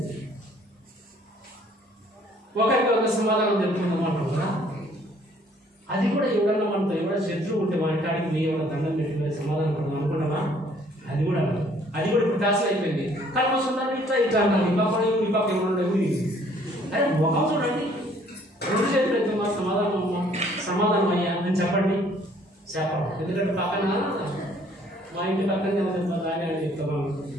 ఒకరికి ఒక సమాధానం చెప్తున్నాం అంటున్నా. అది కూడా ఎవడన్నా మనతో ఎవడ శత్రువు ఉంటే మాట్లాడికి మీ ఎవడ దండం పెట్టుకునే సమాధానం పడదాం అనుకున్నావా? అది కూడా ఇప్పుడు ఫ్యాషన్ అయిపోయింది. కల్మస్ ఉండాలి ఇట్లా అన్నారు. ఈ పక్క ఎవరు అరే ముఖం చూడండి, 2 చేతులు ఎత్తుమా, సమాధానం అయ్యా అని చెప్పండి. చెప్పడం. ఎందుకంటే పక్కన మా ఇంటి పక్కనే బాగానే అని చెప్తాం.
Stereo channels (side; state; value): both; normal; correlation 0.60